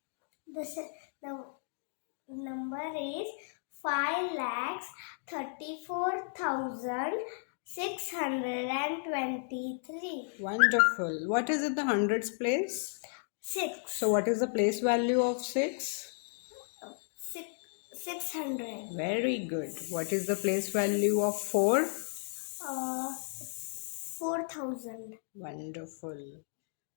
The number is 5,34,623. Wonderful. What is it, the hundreds place? 6. So what is the place value of 6? 600. Very good. What is the place value of 4? 4,000. Wonderful.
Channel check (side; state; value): right; silent; digital silence